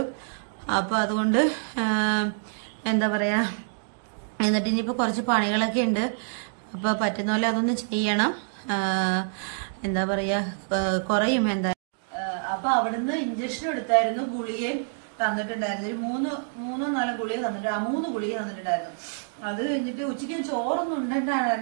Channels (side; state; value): left; silent; digital silence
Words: അപ്പം അതുകൊണ്ട് എന്താ പറയാ, എന്നിട്ട് ഇനിയിപ്പോൾ കുറച്ച് പണികളൊക്കെ ഉണ്ട്. അപ്പോൾ പറ്റുന്ന പോലെ അതൊന്ന് ചെയ്യണം. എന്താ പറയാ, കുറയും എന്തായാലും. അപ്പൊ അവിടുന്ന് ഇഞ്ചക്ഷൻ എടുത്തായിരുന്നു, ഗുളികയും തന്നിട്ടുണ്ടായിരുന്നു. ഒരു മൂന്നോ നാലോ ഗുളിക തന്നിട്ട് 3 ഗുളിക തന്നിട്ടുണ്ടായിരുന്നു. അത് കഴിഞ്ഞിട്ട് ഉച്ചയ്ക്ക് ചോറൊന്നും